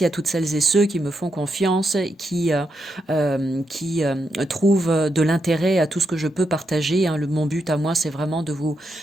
à toutes celles et ceux qui me font confiance, qui trouvent de l'intérêt à tout ce que je peux partager. Hein. Mon but à moi, c'est vraiment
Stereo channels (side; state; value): both; normal; correlation 0.83